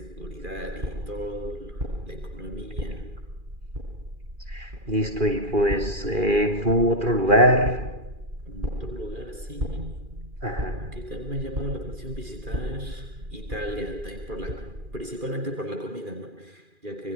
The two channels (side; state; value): left; late; 2.4 ms